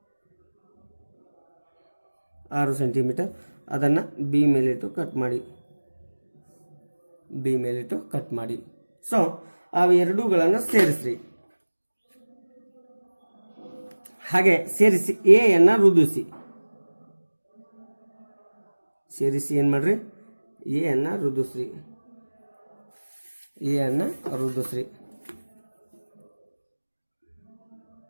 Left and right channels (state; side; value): inverted; both; correlation -1.00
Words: 6 ಸೆಂಟಿಮೀಟರ್ ಅದನ್ನು ಬಿ ಮೇಲಿಟ್ಟು ಕಟ್ ಮಾಡಿ. ಬಿ ಮೇಲಿಟ್ಟು ಕಟ್ ಮಾಡಿ. ಸೊ ಅವು ಎರಡೂಗಳನ್ನು ಸೇರಿಸ್ರಿ. ಹಾಗೆ ಸೇರಿಸಿ ಎ ಅನ್ನು ರುದಿಸಿ. ಸೇರಿಸಿ ಏನು ಮಾಡ್ರಿ, ಎ ಅನ್ನು ರುದಿಸ್ರಿ. ಎ ಅನ್ನು ರುದಿಸ್ರಿ.